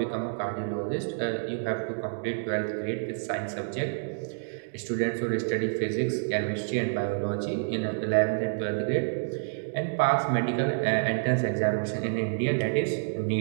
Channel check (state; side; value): silent; left; digital silence